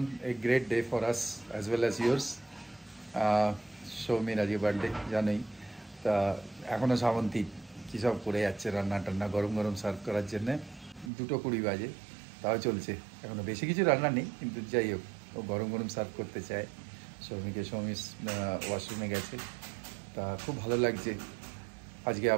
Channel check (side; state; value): left; drops out; at 11.1 s